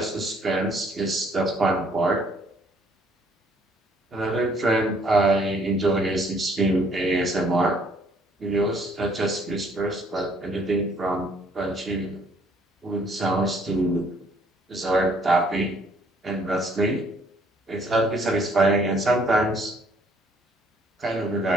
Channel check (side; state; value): both; normal; correlation 0.63